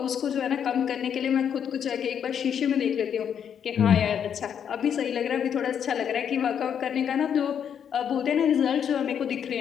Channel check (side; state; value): right; quieter; 8.3 dB